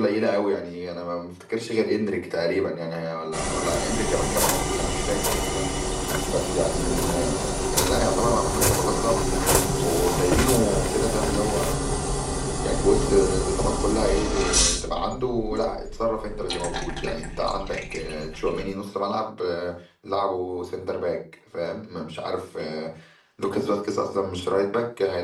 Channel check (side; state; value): both; identical; correlation 1.00